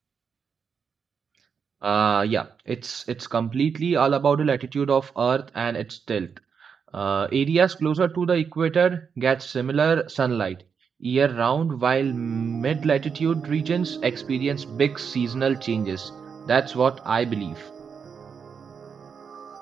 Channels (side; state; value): left; quieter; 6.4 dB